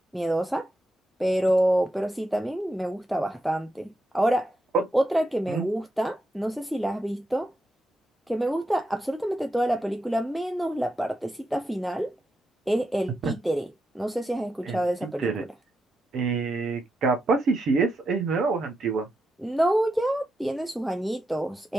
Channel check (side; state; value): both; normal; correlation 0.85